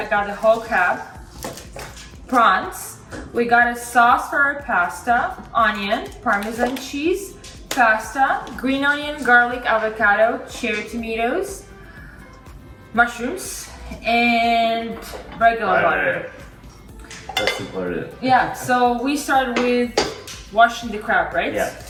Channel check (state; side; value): identical; both; correlation 1.00